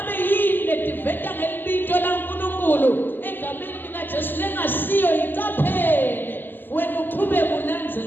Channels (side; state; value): right; late; 0.092 ms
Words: yini letiveta ngelibito la uNkulunkulu egameni lika Jesu lengasiyo iqaphele wena uqhubeke